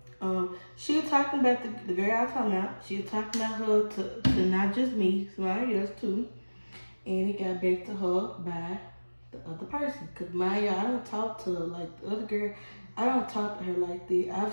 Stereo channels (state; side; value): inverted; both; correlation -1.00